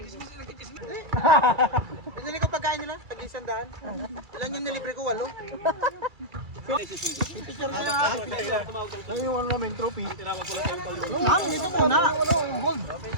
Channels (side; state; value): left; late; 2.3 ms